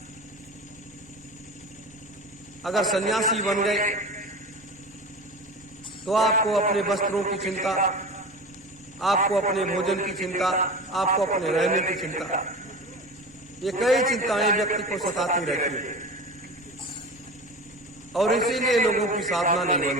अगर सन्यासी बन गए तो आपको अपने वस्त्रों की चिंता, आपको अपने भोजन की चिंता, आपको अपने रहने की चिंता, ये कई चिंताएं व्यक्ति को सताती रहती है। और इसीलिए लोगों की साधना नहीं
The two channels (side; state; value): both; normal; correlation 0.32